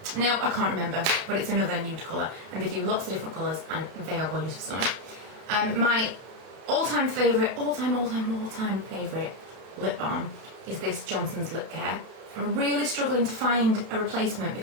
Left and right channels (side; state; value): left; late; 32 ms